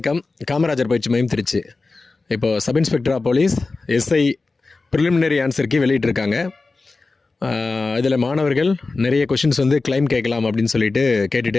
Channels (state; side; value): quieter; right; 3.7 dB